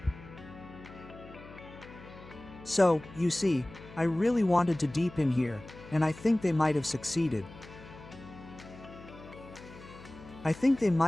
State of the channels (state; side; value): noise; left; hum, 18 dB below the sound